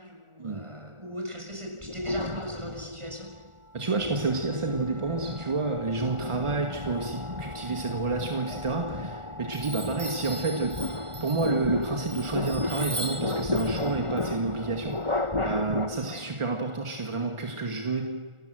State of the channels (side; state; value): left; late; 1.4 ms